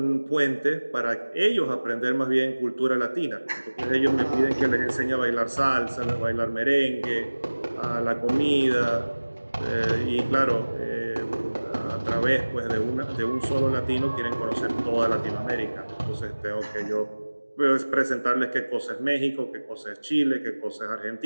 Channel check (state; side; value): inverted; both; correlation -1.00